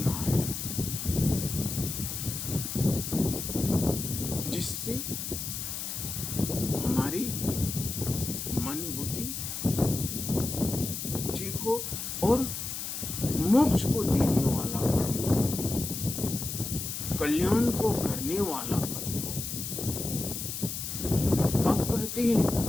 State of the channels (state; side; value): noise; left; hiss, 5 dB below the sound